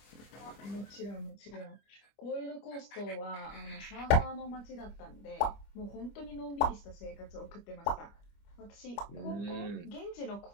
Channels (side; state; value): right; late; 25 ms